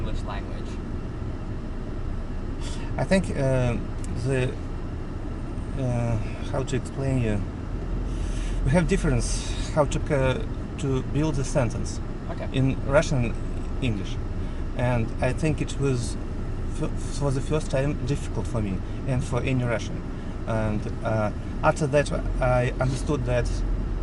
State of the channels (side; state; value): both; identical; correlation 1.00